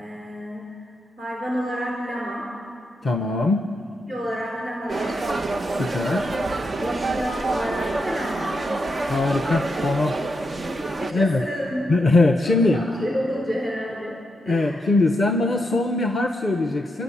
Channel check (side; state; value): both; normal; correlation 0.83